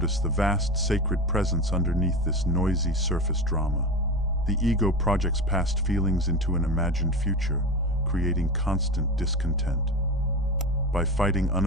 the vast sacred presence underneath this noisy surface drama. The ego projects past feelings into an imagined future, creating constant discontent. By fighting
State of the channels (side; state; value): both; normal; correlation 0.25